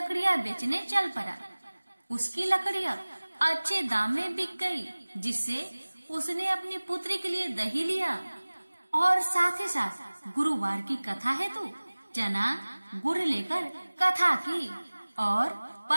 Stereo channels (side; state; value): both; inverted; correlation -1.00